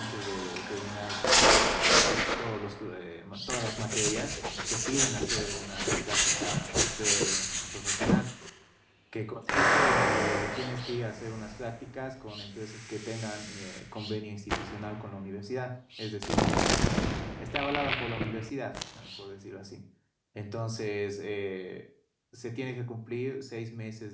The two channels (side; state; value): both; identical; correlation 1.00